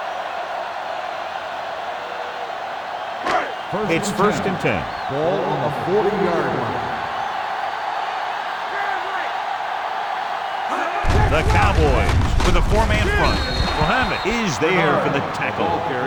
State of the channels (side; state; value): both; identical; correlation 1.00